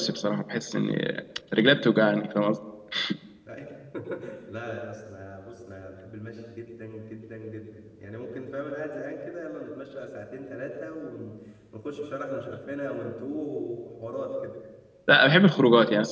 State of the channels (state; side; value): identical; both; correlation 1.00